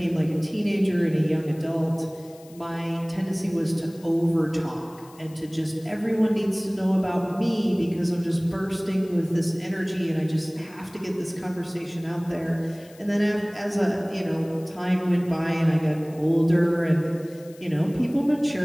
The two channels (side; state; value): left; noise; hiss, 25 dB below the sound